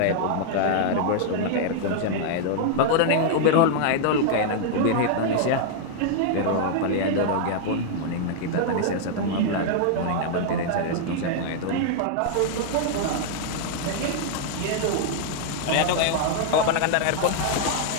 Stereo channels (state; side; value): different; both; correlation -0.01